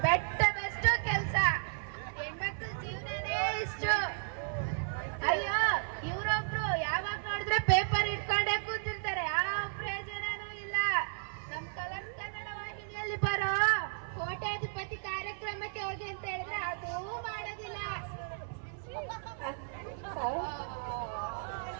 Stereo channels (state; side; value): silent; left; 55 dB below the other